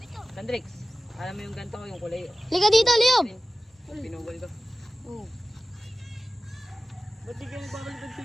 Landrix. Alam mo yung ganito ko, yung kulay. Liga dito, Leo! Pinugol ko. Oo. Ba't di kayo nagbabalibad sa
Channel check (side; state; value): both; normal; correlation 0.96